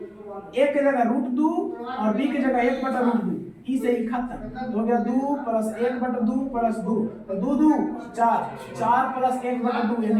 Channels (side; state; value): both; identical; correlation 1.00